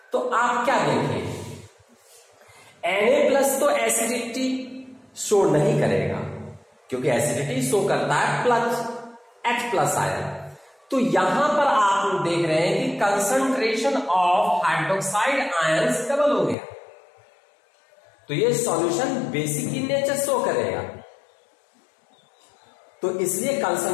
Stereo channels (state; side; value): drops out; right; at 16.6 s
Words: तो आप क्या देखें, Na प्लस तो एसिडिटी शो नहीं करेगा, क्योंकि एसिडिटी शो करता है प्लस H प्लस आयन। तो यहां पर आप देख रहे हैं कि concentration of hydroxide ions double हो गया। तो ये solution basic in nature show करेगा। तो इसलिए